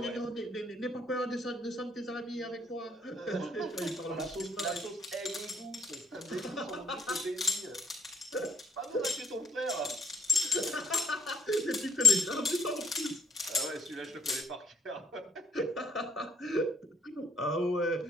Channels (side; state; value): both; normal; correlation 0.69